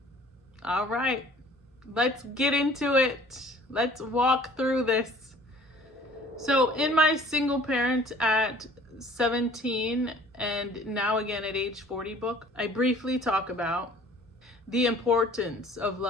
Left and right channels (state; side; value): normal; both; correlation 0.51